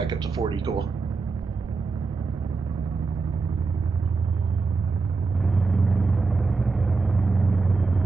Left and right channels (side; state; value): left; quieter; 4.3 dB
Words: up to 40, cool.